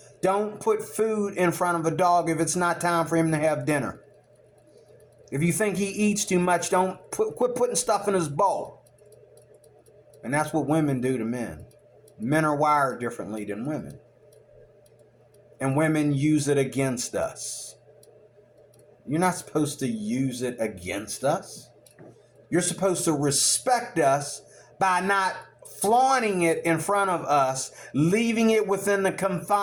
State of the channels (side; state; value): both; identical; correlation 1.00